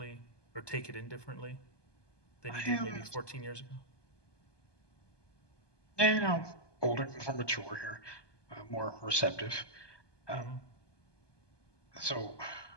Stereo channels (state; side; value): late; right; 1.2 ms